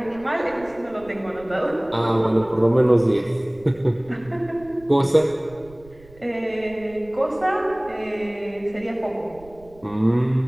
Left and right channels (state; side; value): noise; right; rumble, 23 dB below the sound